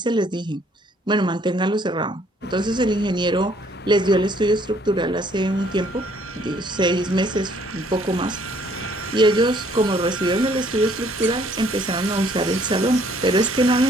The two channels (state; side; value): normal; both; correlation 0.62